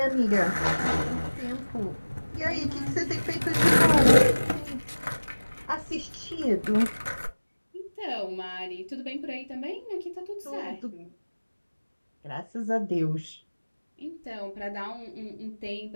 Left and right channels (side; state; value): both; inverted; correlation -1.00